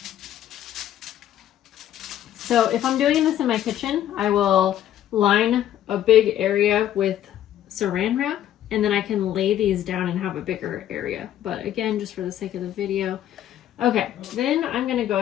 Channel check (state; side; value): quieter; right; 11.6 dB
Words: So if I'm doing this in my kitchen, I will line a big area with saran wrap, and then I can lay these down and have a bigger area. But again, just for the sake of the video. Okay, then I'm gonna go